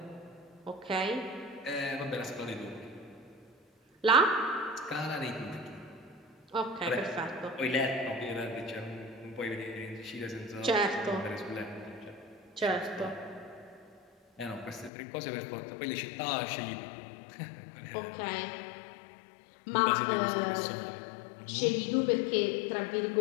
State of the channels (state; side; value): drops out; right; at 14.9 s